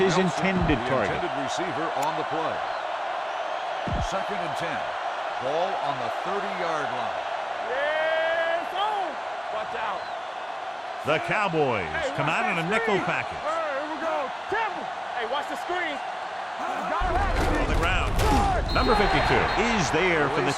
intended target. Intended receiver on the play. 2nd and 10. Ball on the 30-yard line. Yes, on. Watch out. The Cowboys come out in a nickel package. Here we go. Careful. Hey, watch the screen. On the ground. Number 52 is there for the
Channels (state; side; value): identical; both; correlation 1.00